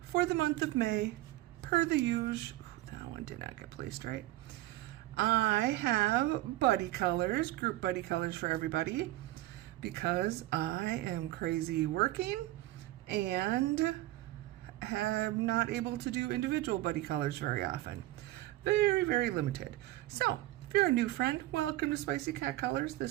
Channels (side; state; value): left; quieter; 16.8 dB